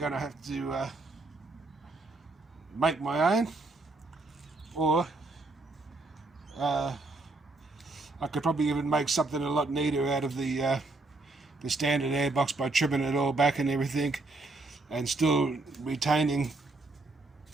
to have to make my own, or I could probably even make something a lot neater out of the standard airbox by trimming it all back and everything, and still retaining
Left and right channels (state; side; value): quieter; left; 3.2 dB